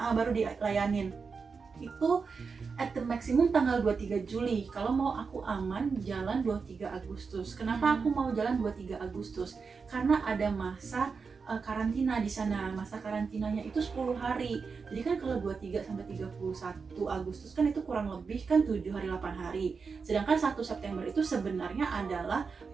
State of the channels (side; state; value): left; quieter; 5.1 dB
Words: baru dilayanin. Itu at the maximum tanggal 23 Juli. Kalau mau aku aman jalan 23 Agustus. Kenapa aku mau jalan 23 Agustus? Karena ada masa karantina di sana. Masa karantinanya itu 10 hari. Jadi kan kalau 23 sampai 31 Agustus kan itu kurang lebih kan 7 hari 8 hari. Sedangkan 1 September itu sebenarnya adalah